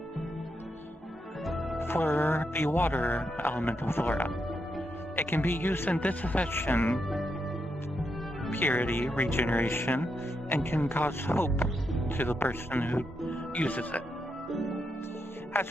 For the water elemental flora, it can be used in disaffection, purity, regeneration, and can cause hope to the person who uses it. As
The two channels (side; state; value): both; normal; correlation 0.82